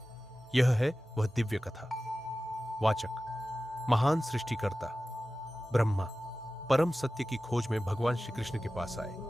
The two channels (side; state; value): both; normal; correlation 0.95